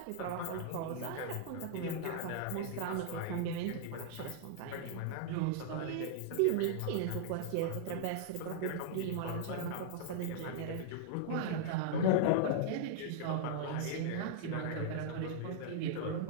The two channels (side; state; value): both; different; correlation -0.01